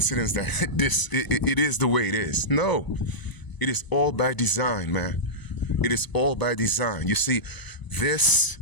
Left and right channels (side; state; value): right; late; 1.0 ms